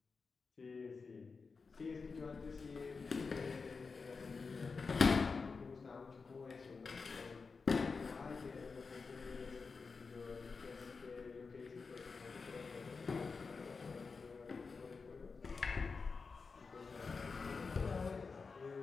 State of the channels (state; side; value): quieter; right; 4.7 dB